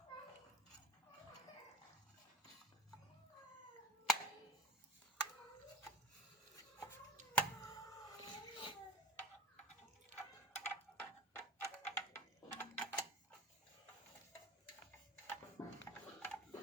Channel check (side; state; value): both; normal; correlation 0.38